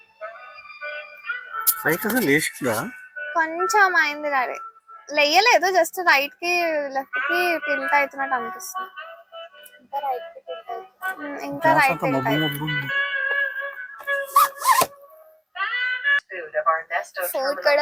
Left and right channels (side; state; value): both; identical; correlation 1.00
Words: పైకి అసలు లేచిందా? కొంచెం అయింది daddy, లేయలేదు, just right కి left కి టిల్ట్ అవుతున్నట్టు అనిపిస్తుంది. ఇంకా right Food of our Nesto